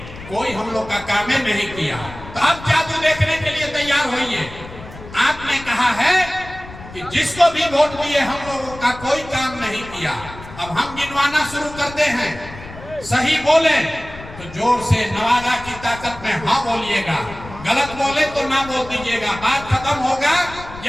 कोई हम लोग का काम नहीं किया। तो अब जादू देखने के लिए तैयार होइए। आपने कहा है कि जिसको भी वोट दिए हम लोगों का कोई काम नहीं किया। अब हम गिनवाना शुरू करते हैं, सही बोले तो जोर से नवादा की ताकत में हाँ बोलिएगा, गलत बोले तो ना बोल दीजिएगा। बात खत्म होगा,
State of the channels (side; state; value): left; noise; rumble, 15 dB below the sound